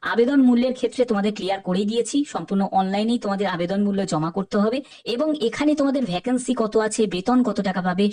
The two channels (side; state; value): both; identical; correlation 1.00